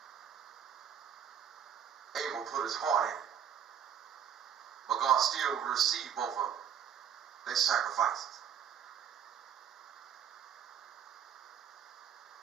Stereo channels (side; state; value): left; quieter; 8.6 dB